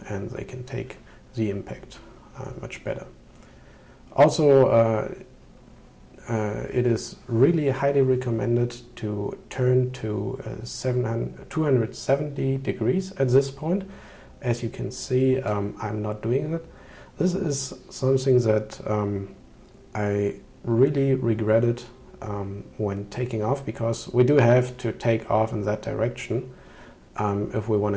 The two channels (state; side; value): identical; both; correlation 1.00